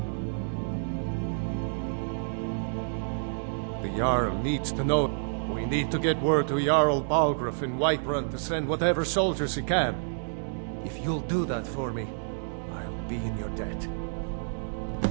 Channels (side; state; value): left; silent; digital silence